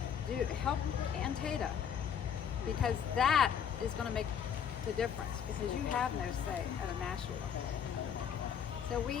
help Antietam, because that is going to make the difference, because you have no say at a national level. So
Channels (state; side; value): quieter; right; 8.0 dB